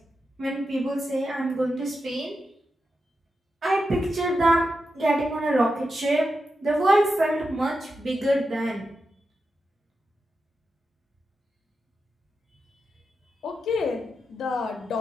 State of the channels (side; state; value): both; normal; correlation 0.88